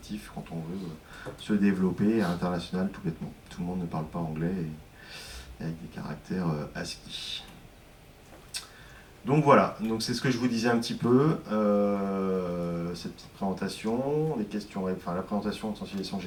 quand on veut se développer à l'international tout bêtement. Tout le monde ne parle pas anglais avec des caractères ASCII. Donc voilà, donc c'est ce que je vous disais un petit peu, cette petite présentation, la présentation de sensibilisation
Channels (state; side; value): identical; both; correlation 1.00